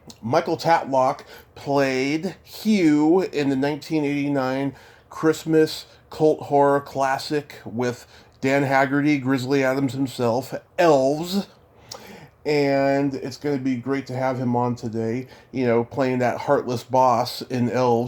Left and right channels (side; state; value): both; identical; correlation 1.00